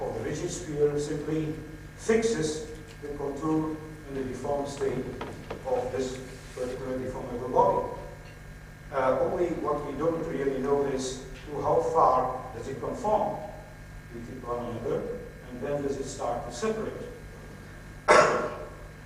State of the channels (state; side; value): identical; both; correlation 1.00